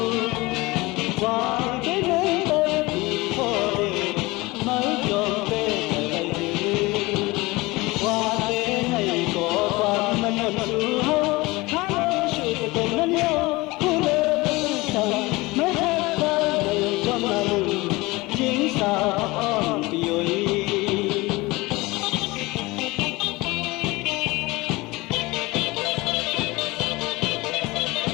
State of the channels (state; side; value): quieter; right; 22.1 dB